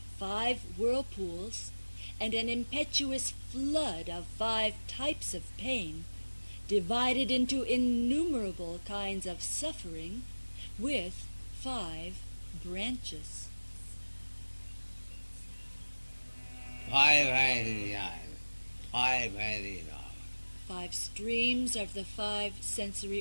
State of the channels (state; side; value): inverted; both; correlation -1.00